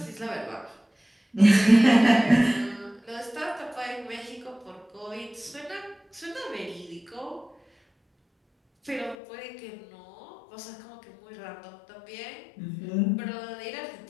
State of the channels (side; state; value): right; drops out; at 9.2 s